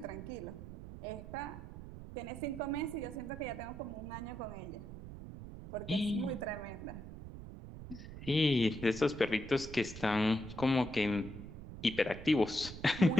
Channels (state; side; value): noise; right; rumble, 11 dB below the sound